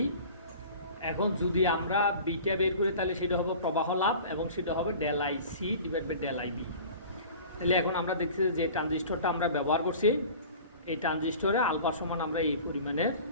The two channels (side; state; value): both; inverted; correlation -0.41